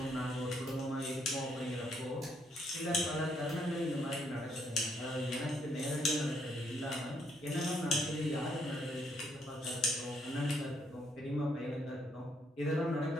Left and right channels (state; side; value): normal; both; correlation 0.73